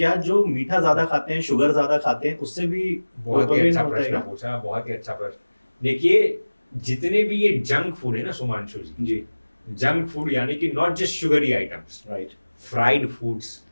जो मीठा ज्यादा खाते हैं, शुगर ज्यादा खाते हैं, उससे भी बहुत ही अच्छा प्रश्न पूछा, बहुत ही अच्छा प्रश्न। देखिए, जितने भी ये जंक फूड है ना सुमांशु जी, जंक फूड यानी कि not just sugary items, right, fried foods,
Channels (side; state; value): both; inverted; correlation -1.00